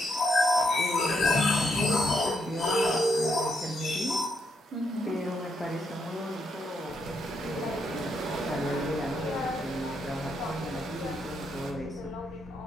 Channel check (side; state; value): both; normal; correlation 0.78